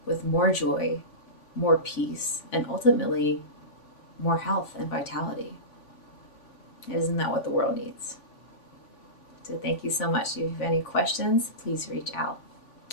with more joy, more peace, and ultimately more health and vitality. Isn't that what the world needs? So thank you so much. If you have any questions, please reach out.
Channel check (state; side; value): late; right; 3.5 ms